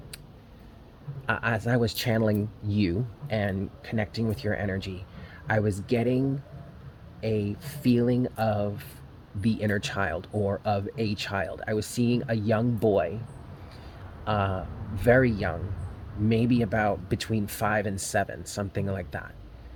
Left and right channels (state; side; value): identical; both; correlation 1.00